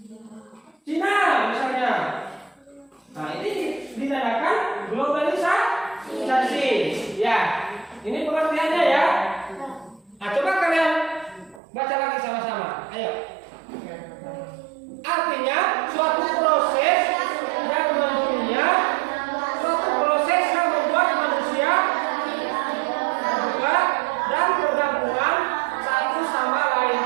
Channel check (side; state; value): left; drops out; at 11.6 s